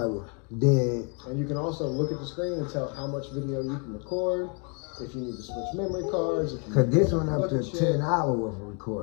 then And you can also look at the screen and tell how much video you can record, if you need to switch memory cards. If you cause this need one up look to at shit. 10 hours worth of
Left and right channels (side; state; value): right; quieter; 35.7 dB